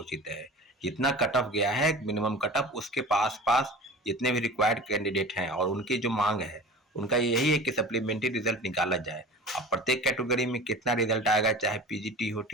है। जितना कट ऑफ गया है मिनिमम कट ऑफ, उसके पास पास जितने भी रिक्वायर्ड कैंडिडेट हैं और उनकी जो मांग है उनका यही है कि सप्लीमेंट्री रिजल्ट निकाला जाए। अब प्रत्येक कैटेगरी में कितना रिजल्ट आएगा, चाहे पीजीटी हो,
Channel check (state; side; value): normal; both; correlation 0.37